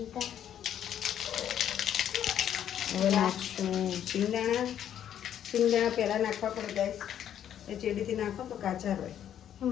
હવે નાખશું સિંગદાણા. સિંગદાણા પહેલાં નાખવા પડે ગાઈસ. એ ચેડીથી નાખો તો કાચા હોય.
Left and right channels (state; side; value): quieter; right; 10.1 dB